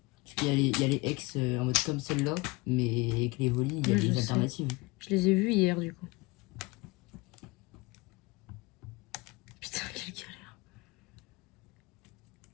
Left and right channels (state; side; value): quieter; right; 24.2 dB